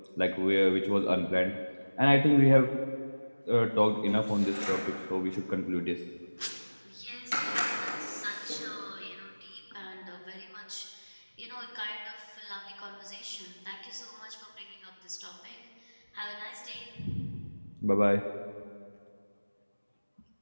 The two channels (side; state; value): both; inverted; correlation -1.00